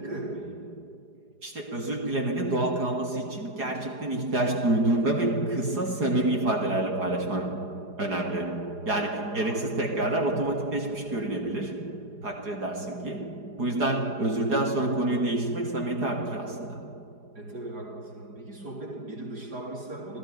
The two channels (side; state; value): left; late; 4.9 ms